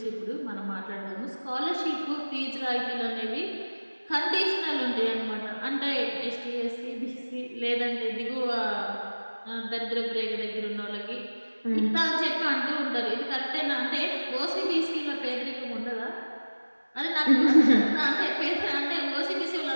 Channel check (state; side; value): inverted; both; correlation -1.00